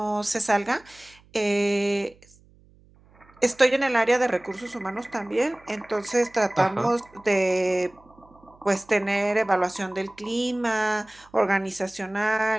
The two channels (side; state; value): right; noise; hum, 29 dB below the sound